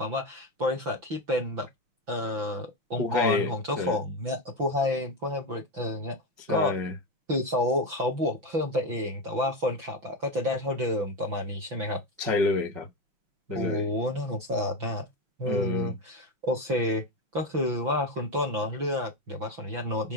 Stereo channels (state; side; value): late; left; 6.0 ms